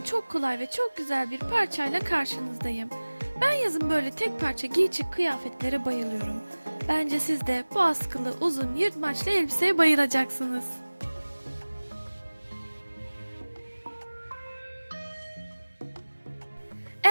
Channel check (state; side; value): inverted; both; correlation -1.00